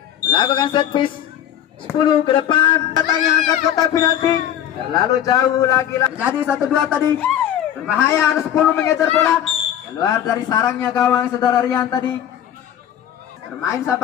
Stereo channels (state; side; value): quieter; right; 10.6 dB